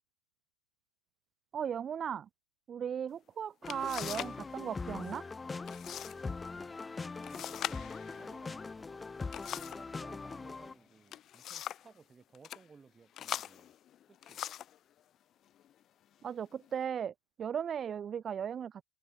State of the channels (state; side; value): normal; both; correlation 0.72